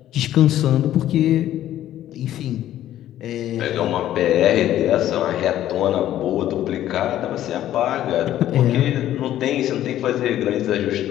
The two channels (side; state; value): right; quieter; 12.5 dB